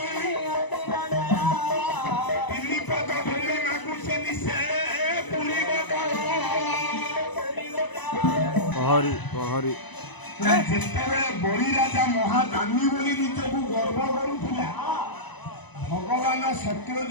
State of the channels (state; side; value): late; right; 1.0 ms